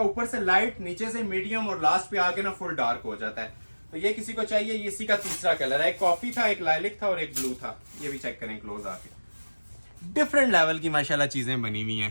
ऊपर से लाइट, नीचे से मीडियम, और लास्ट पे आके ना फुल डार्क हो जाता है। तो ये किसी को चाहिए, ये इसी का तीसरा कलर है। एक कॉफी था, एक लाइलिक था और एक ब्लू था। ये भी चेक करें क्लोज आके, डिफरेंट लेवल की माशाल्लाह चीजें बनी हुई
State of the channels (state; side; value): inverted; both; correlation -1.00